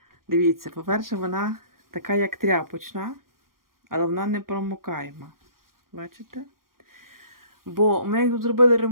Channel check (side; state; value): left; late; 0.91 ms